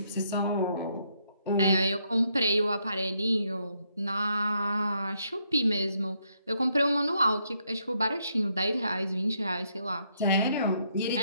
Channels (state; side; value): inverted; both; correlation -0.75